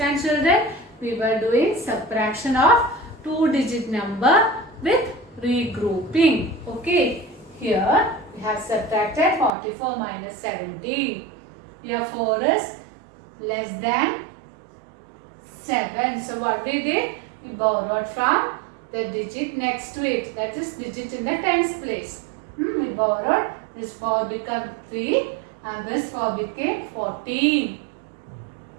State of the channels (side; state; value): left; drops out; at 9.5 s